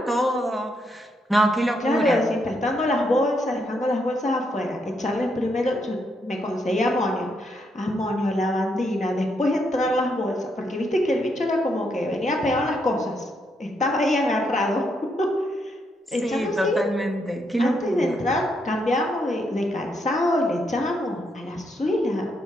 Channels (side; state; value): both; normal; correlation 0.77